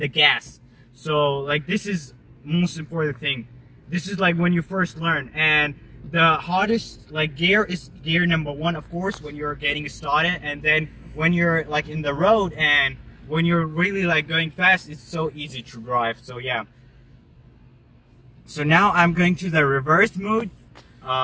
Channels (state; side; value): identical; both; correlation 1.00